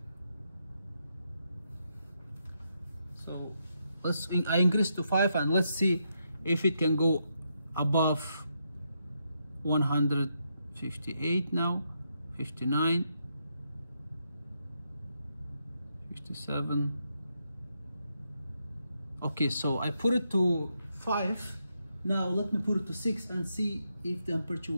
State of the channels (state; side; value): inverted; both; correlation -0.81